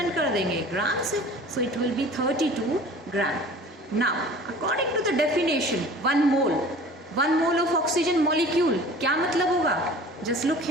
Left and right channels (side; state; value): both; normal; correlation 0.44